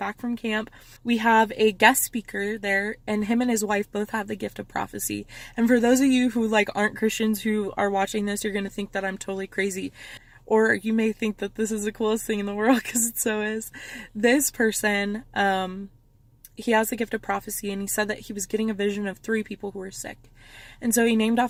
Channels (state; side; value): identical; both; correlation 1.00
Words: from camp, we have a guest speaker there, and him and his wife both have the gift of prophecy. And for those of you who like aren't Christians who are watching this, you're going to think that I'm totally crazy. Or you may think that this is the coolest thing in the world, because it so is. This person, he has the gift of prophecy, and he said that he was getting a vision of 3 people who were sick. And so he named